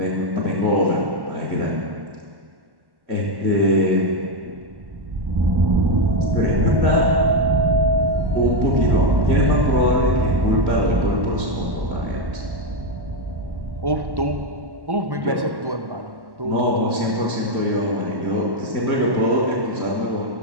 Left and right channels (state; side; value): late; left; 1.1 ms